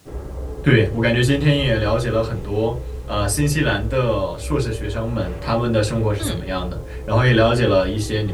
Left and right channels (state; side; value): identical; both; correlation 1.00